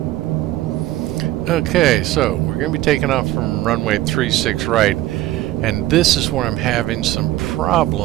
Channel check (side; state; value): left; quieter; 15.6 dB